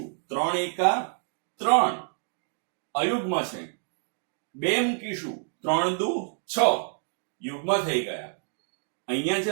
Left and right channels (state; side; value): silent; left; digital silence